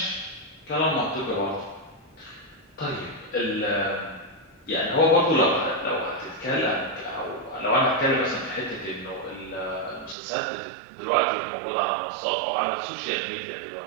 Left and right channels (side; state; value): left; drops out; at 10.2 s